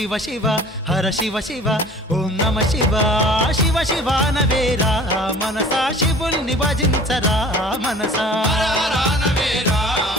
శివ హర శివ శివ ఓం నమ శివ శివ శివ నవేరా మనసా శివుల్ని భజించరా మనసా హర హర నవేరా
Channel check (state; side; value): normal; both; correlation 0.46